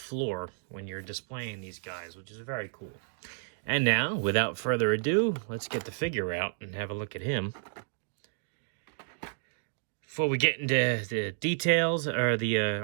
when you're displaying these guys, which is very cool. And now, without further ado, let's get the figure out and have a look at him. Before we get into the details or the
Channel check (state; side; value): silent; left; digital silence